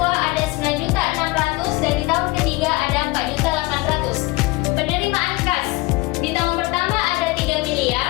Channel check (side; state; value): right; quieter; 21.9 dB